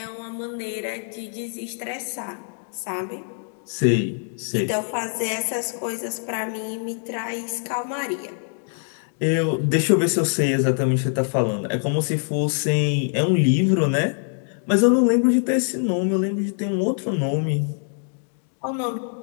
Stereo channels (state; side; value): silent; right; 63 dB below the other